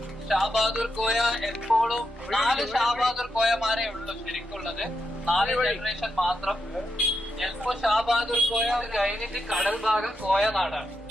ഷാബഹാദൂർ കോയ എപ്പോഴും 4 ഷാബഹാദൂർ കോയമാരേ ഉള്ളൂ ശരിക്കുള്ളത്. 4 ജനറേഷൻ മാത്രം. ചിലപ്പോ ഷാബഹാദൂർ കോയ കഴിഞ്ഞിട്ട് കടൽ ഭാഗം കോയ നാടാണ്.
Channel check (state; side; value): normal; both; correlation 0.84